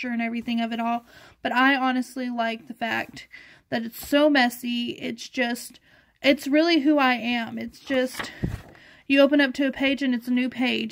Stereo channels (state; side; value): identical; both; correlation 1.00